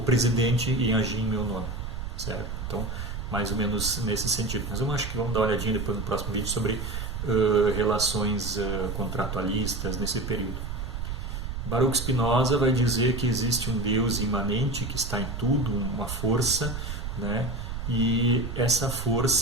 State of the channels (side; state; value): right; noise; rumble, 5 dB below the sound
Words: em agir em meu nome, certo? Então, mais ou menos nesse sentido. Mas eu acho que vamos dar uma olhadinha depois no próximo vídeo sobre relações contratualistas nesse período. Baruch Spinoza vai dizer que existe um Deus imanente que está em tudo, uma força, né? E essa